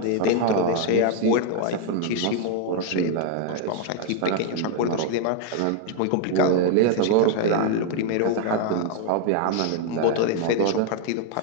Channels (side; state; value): both; different; correlation 0.00